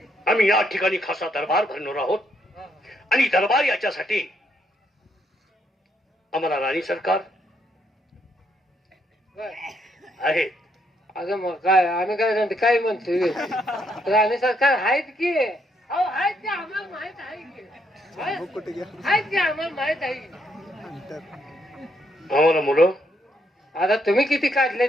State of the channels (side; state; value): both; normal; correlation 0.75